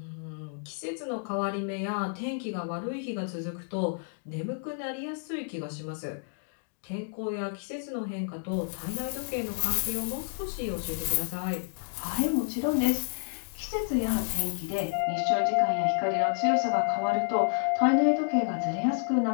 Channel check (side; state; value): right; silent; digital silence